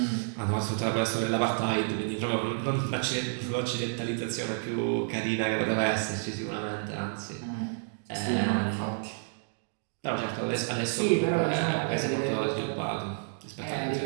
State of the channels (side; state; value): left; silent; digital silence